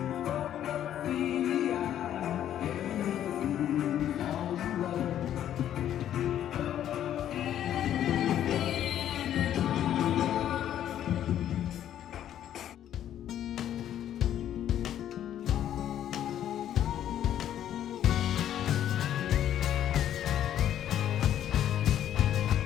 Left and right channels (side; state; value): right; quieter; 11.0 dB